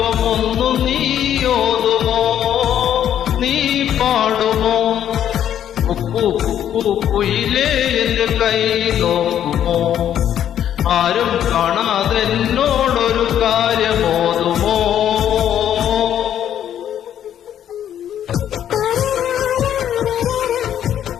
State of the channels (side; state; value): right; quieter; 10.3 dB